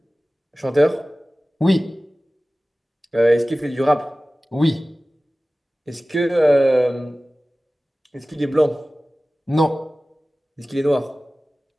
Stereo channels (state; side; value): normal; both; correlation 0.97